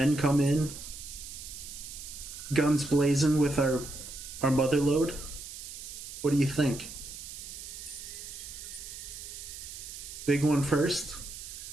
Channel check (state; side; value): noise; right; hiss, 11 dB below the sound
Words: come in guns blazing with our mother load? What do you think? Big one first?